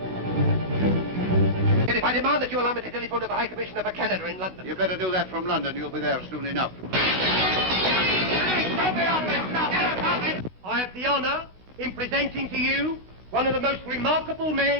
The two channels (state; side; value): late; left; 16 ms